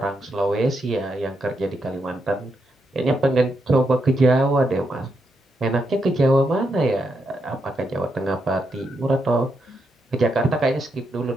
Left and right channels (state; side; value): normal; both; correlation 0.82